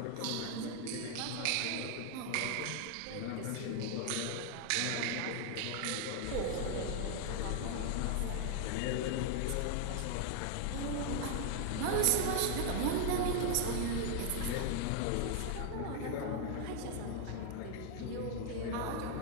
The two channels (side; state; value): both; different; correlation 0.00